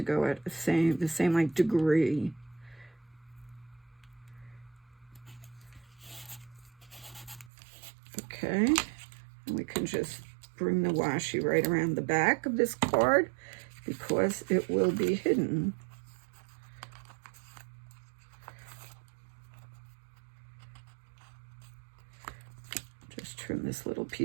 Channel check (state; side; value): drops out; left; at 7.5 s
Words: go at the same like degree. Okay, and we can just bring the washi right around the back of this card because it will be hidden. Just trim this little